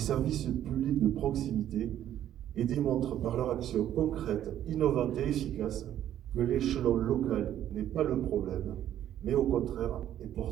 publics de proximité et démontrent par leur action concrète, innovante et efficace que l'échelon local n'est pas le problème, mais au contraire est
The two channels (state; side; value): quieter; left; 11.4 dB